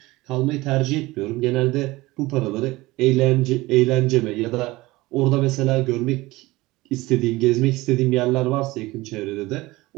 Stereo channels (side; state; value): left; quieter; 20.2 dB